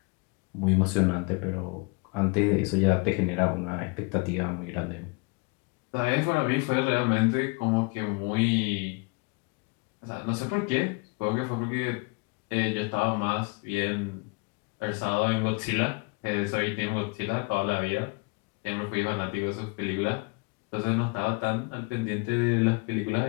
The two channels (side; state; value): right; quieter; 30.4 dB